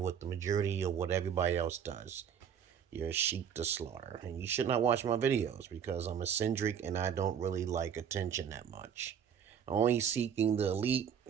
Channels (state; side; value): quieter; left; 8.2 dB